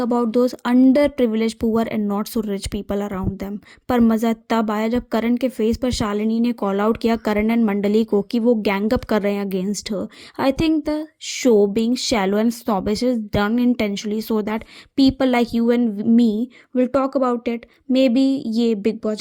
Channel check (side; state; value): both; identical; correlation 1.00